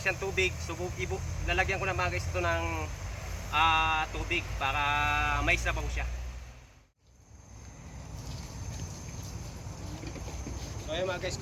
siyang tubig, so lalagyan ko na mga guys ito ng tubig para may sabaw siya. So ayun mga guys,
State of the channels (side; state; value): both; identical; correlation 1.00